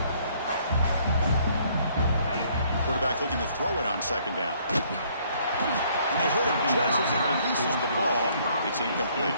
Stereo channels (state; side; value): inverted; both; correlation -0.64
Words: Quarterback looking to throw it on second down. And they hit him just as he releases the ball. It's incomplete.